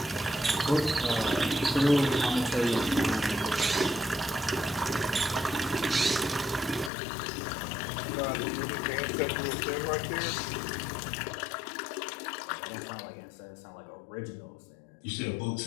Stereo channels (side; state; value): right; drops out; at 6.9 s